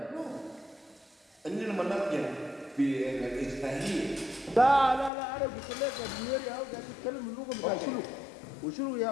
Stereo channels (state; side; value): drops out; right; at 5.1 s